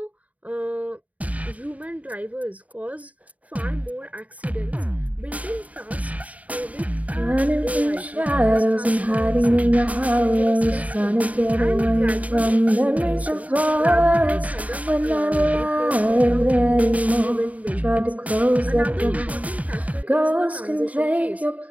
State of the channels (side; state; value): left; late; 0.070 ms